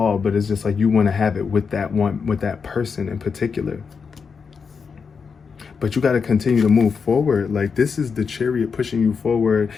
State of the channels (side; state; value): right; quieter; 5.7 dB